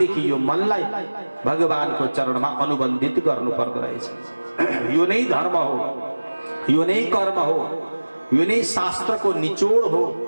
यो मनलाई भगवानको चरणमा अनुबन्धित गर्नु पर्दो रहेछ। यो नै धर्म हो, यो नै कर्म हो, यो नै शास्त्रको निचोड हो,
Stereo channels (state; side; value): inverted; both; correlation -1.00